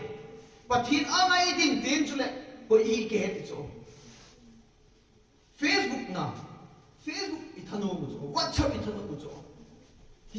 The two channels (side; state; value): both; identical; correlation 1.00